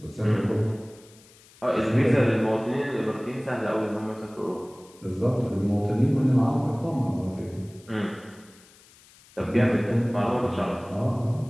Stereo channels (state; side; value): noise; left; hiss, 26 dB below the sound